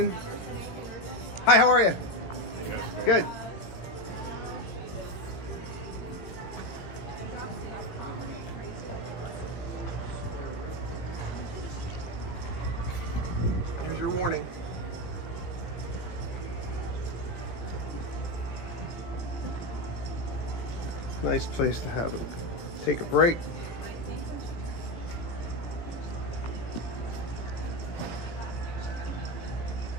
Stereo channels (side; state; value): right; late; 17 ms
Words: Hi, how are you? Good. Here's your warning. Nice place to have it. Take a break.